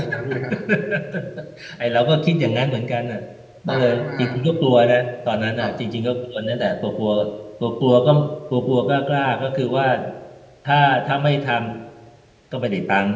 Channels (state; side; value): identical; both; correlation 1.00